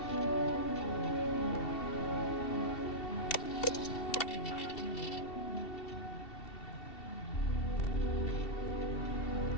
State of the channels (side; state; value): right; late; 2.7 ms